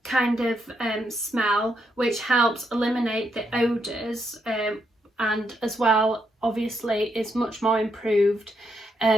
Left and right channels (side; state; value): both; normal; correlation 0.79